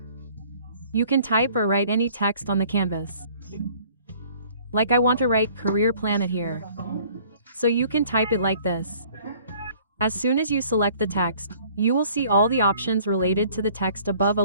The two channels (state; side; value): inverted; both; correlation -0.55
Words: You can type or write any text on the canvas. Like I want to write Career Planet here. So you can type it like this. As soon as you select the text, you will see all the options related to the text above